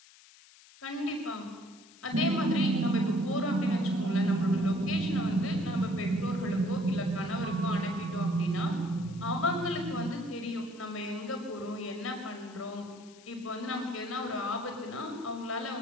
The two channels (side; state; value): left; noise; hiss, 23 dB below the sound